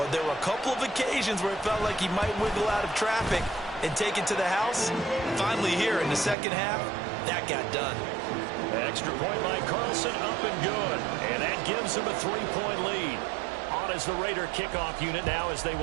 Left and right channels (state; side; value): drops out; left; at 6.4 s